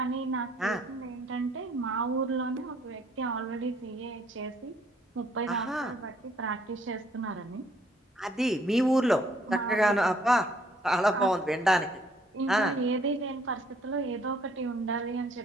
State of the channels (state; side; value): normal; both; correlation 0.64